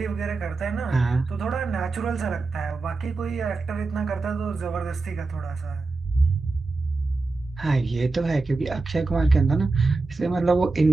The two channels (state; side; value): quieter; left; 3.7 dB